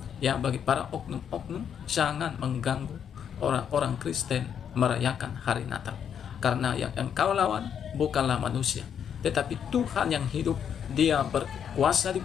ya, bagi para oknum-oknum, jangan mengganggu orang-orang Kristen merayakan hari Natal. Karena yang engkau lawan bukanlah manusia, tetapi Tuhan yang hidup. Dia berkuasa di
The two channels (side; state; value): right; quieter; 8.2 dB